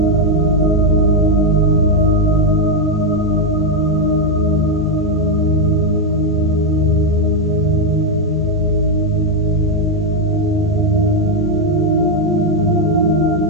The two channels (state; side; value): normal; both; correlation 0.02